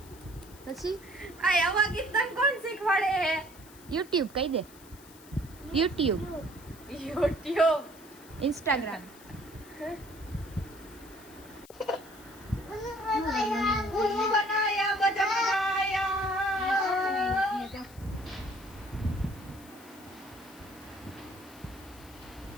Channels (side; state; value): left; noise; hiss, 22 dB below the sound